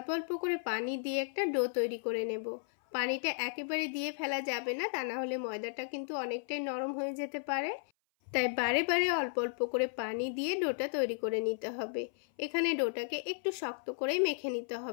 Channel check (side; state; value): right; silent; 55 dB below the other